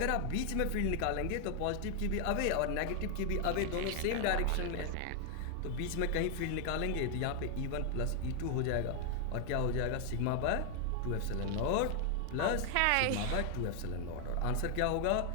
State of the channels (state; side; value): different; both; correlation 0.00